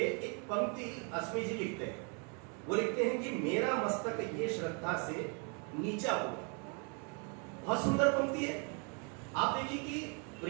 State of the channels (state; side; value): quieter; left; 35.4 dB